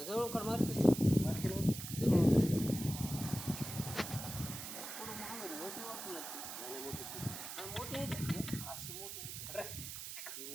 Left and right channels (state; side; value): noise; right; hiss, 8 dB below the sound